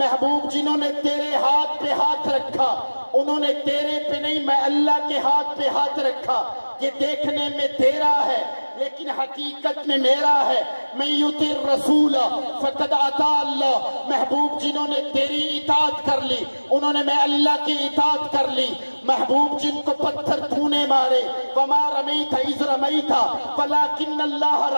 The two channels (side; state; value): both; inverted; correlation -1.00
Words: جنہوں نے تیرے ہاتھ پہ ہاتھ رکھا انہوں نے تیرے پہ نہیں، میں اللہ کے ہاتھ پہ ہاتھ رکھا۔ یہ دیکھنے میں تیرا ہے لیکن حقیقت میں میرا ہے۔ من یطع الرسول فقد اطاع اللہ۔ محبوب جنہوں نے تیری اطاعت کر لی انہوں نے میں اللہ کی اطاعت کر لی۔ محبوب جن کو پتھر تو نے مارے، وما رمیت اذ رمیت ولکن اللہ